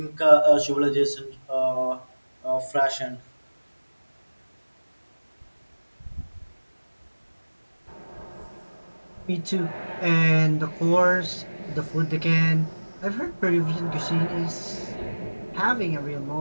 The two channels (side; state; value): both; inverted; correlation -1.00